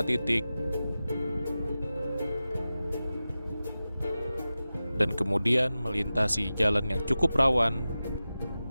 titik. Dan kemudian melintasi jalan yang cukup rawan,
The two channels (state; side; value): inverted; both; correlation -0.94